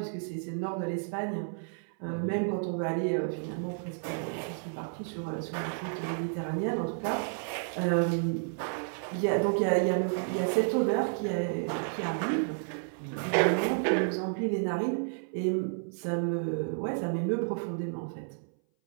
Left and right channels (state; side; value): silent; left; 57 dB below the other